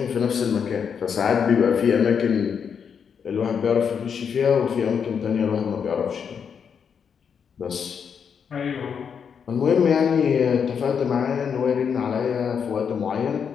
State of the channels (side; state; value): right; quieter; 7.0 dB